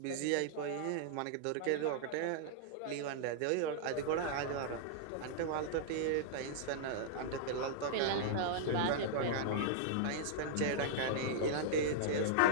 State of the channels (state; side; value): different; both; correlation -0.02